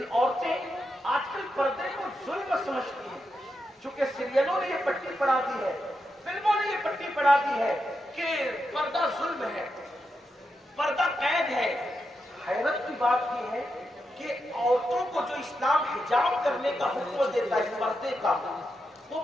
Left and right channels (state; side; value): normal; both; correlation 0.86